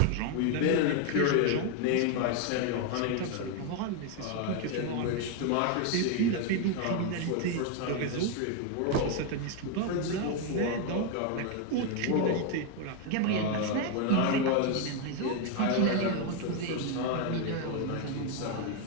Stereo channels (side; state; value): both; different; correlation 0.01